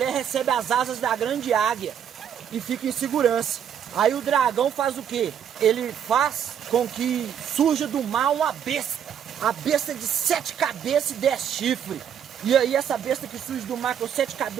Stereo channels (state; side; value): quieter; left; 8.8 dB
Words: recebe as asas da grande águia e fica em segurança. Aí o dragão faz o quê? Ele faz com que surja do mar uma besta. A besta de 7 cabeças e 10 chifres. E aí essa besta que surge do mar com 7